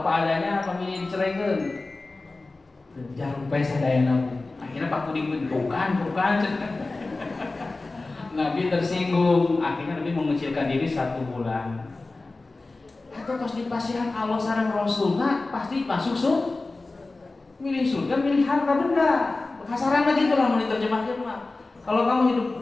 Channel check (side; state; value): right; quieter; 3.3 dB